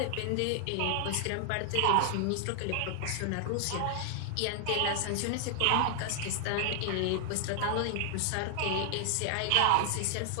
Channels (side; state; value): both; different; correlation 0.00